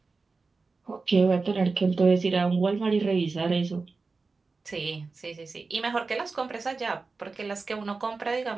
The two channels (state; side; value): quieter; left; 4.1 dB